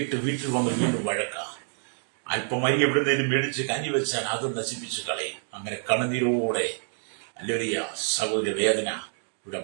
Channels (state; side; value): silent; left; 60 dB below the other